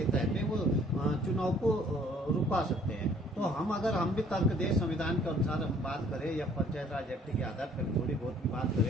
तहत वो चुनाव को रुकवा सकते हैं। तो हम भी तर्क दें, संविधान के अनुसार हम बात करें या पंचायत राज एक्ट के आधार पर थोड़ी बहुत की बात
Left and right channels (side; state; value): both; normal; correlation 0.58